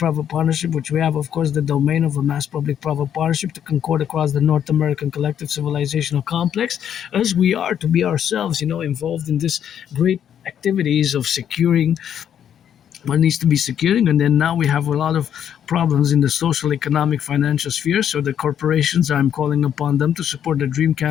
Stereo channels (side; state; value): right; quieter; 9.3 dB